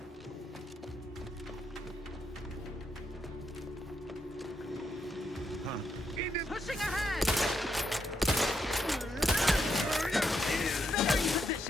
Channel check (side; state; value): both; normal; correlation 0.80